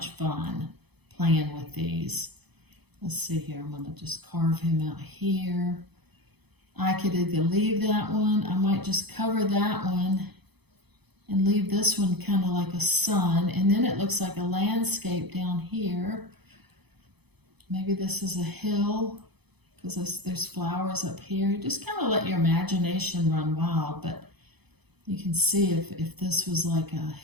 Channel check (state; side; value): late; left; 0.98 ms